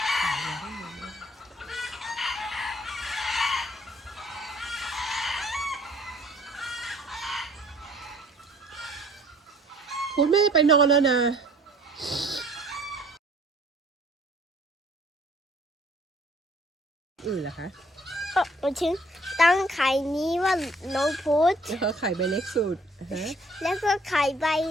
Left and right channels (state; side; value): normal; both; correlation 0.58